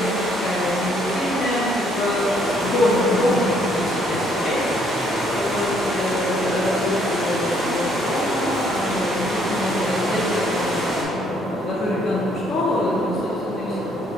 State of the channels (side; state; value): both; normal; correlation 0.67